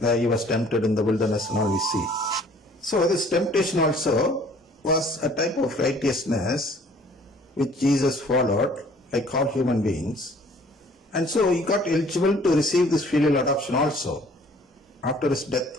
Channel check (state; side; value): normal; both; correlation 0.55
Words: he was tempted in the wilderness and all we see. So this temptation also was a type of righteousness which Jesus followed, like all human beings. And so he got eligible to receive this filial adoption also after his